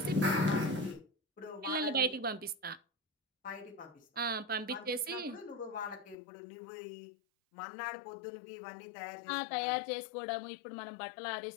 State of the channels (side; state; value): right; drops out; at 6.2 s